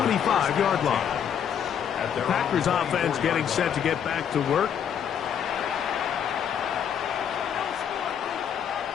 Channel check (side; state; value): right; quieter; 8.5 dB